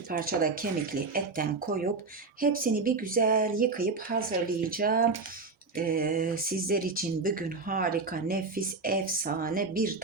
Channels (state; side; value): quieter; left; 4.0 dB